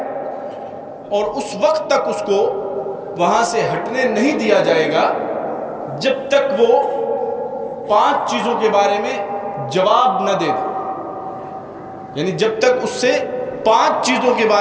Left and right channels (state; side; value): identical; both; correlation 1.00